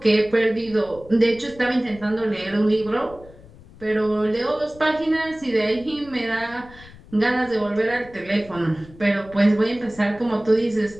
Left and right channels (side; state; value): left; noise; rumble, 21 dB below the sound